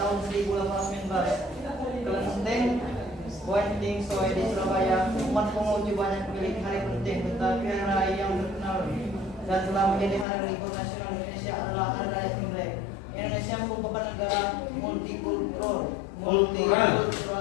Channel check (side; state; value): right; drops out; at 10.2 s